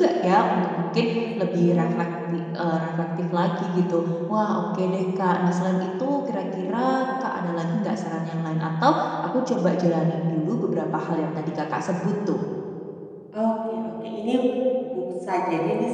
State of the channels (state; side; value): identical; both; correlation 1.00